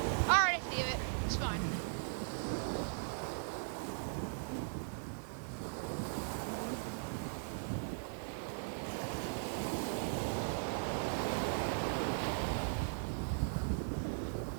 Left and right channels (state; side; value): silent; left; digital silence